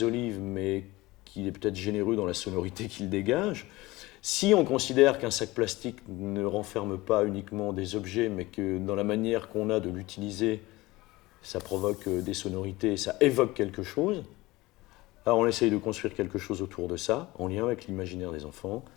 olives, mais qu'il est peut-être généreux dans la sonorité qu'il dégage, si on considère qu'un sac plastique ne renferme pas uniquement des objets, mais que dans la manière qu'on a de l'utiliser, ça provoque des sonorités, ça évoque quelque chose, alors on essaye de construire quelque chose autour de ça, en lien avec l'imaginaire des enfants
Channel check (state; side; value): quieter; right; 20.2 dB